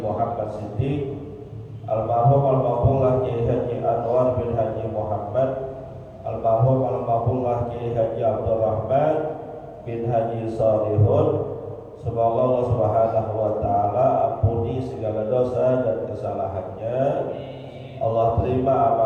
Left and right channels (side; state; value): both; identical; correlation 1.00